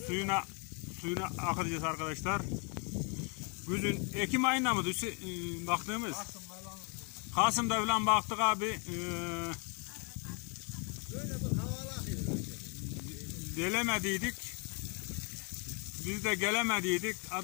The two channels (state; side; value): quieter; right; 34.6 dB